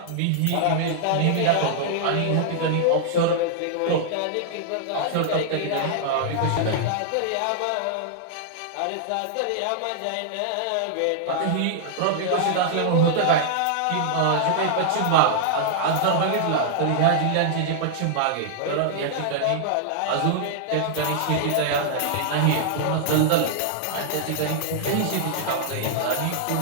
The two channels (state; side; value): different; both; correlation -0.01